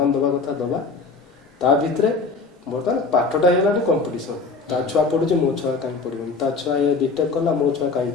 ଦେବା କଥା ଦେବା। ତା ଭିତରେ ବର୍ତ୍ତମାନ ପାଠଟା ହେଇଗଲାଣି କମ୍ପିଟିସନ। ତା ଛୁଆ ପଢୁଛି, ମୋ ଛୁଆ କାହିଁ ପଢିବନି, ତା ଛୁଆ ଏ ବିଟେକ୍ କଲା, ମୋ ଛୁଆ କାହିଁ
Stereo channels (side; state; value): right; quieter; 4.1 dB